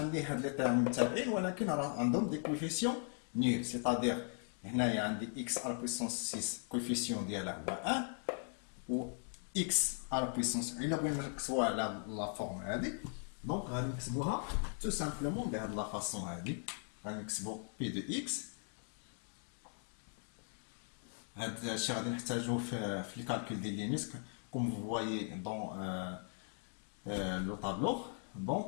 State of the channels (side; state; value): right; silent; 52 dB below the other